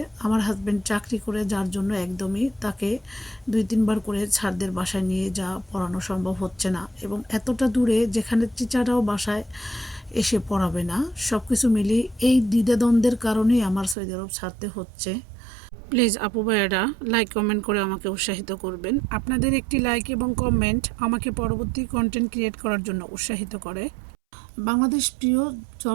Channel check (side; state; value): left; drops out; at 14.0 s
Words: আমার হাজব্যান্ড চাকরি করে, যার জন্য একদমই তাকে 2-3 বার করে ছাড়দের বাসায় নিয়ে যাওয়া পড়ানো সম্ভব হচ্ছে না, এবং এতটা দূরে যেখানে টিচাররাও বাসায় এসে পড়াবে না। সব কিছু মিলিয়ে এই দ্বিধাদ্বন্দ্বের কারণেই আমার সৌদি আরব ছাড়তে হচ্ছে। প্লিজ আপু ভাইয়েরা লাইক কমেন্ট করে আমাকে উৎসাহিত করবেন। আপনাদের একটি লাইক এবং কমেন্ট আমাকে পরবর্তী কন্টেন্ট ক্রিয়েট করার জন্য উৎসাহিত করে। বাংলাদেশ প্রিয়